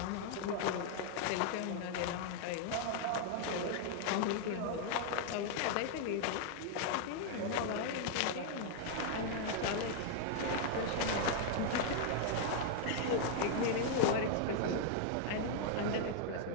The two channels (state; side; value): different; both; correlation 0.00